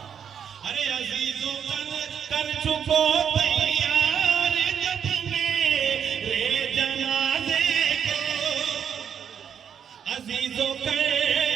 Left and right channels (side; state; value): left; quieter; 7.9 dB